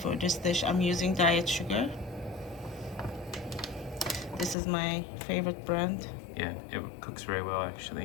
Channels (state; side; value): drops out; right; at 4.5 s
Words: this dish. I'm using diet sugar. This is my favorite brand. Yeah, it cooks very well